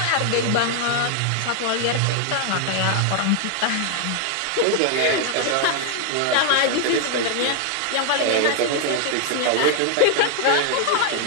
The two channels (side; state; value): both; different; correlation 0.00